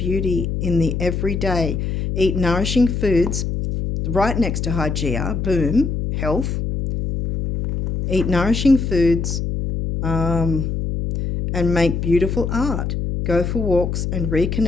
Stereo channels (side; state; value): left; noise; hum, 2 dB below the sound